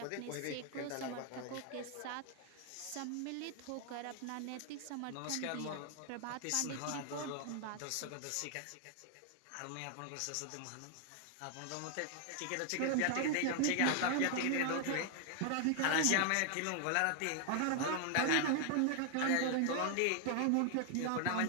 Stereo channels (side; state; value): both; different; correlation 0.00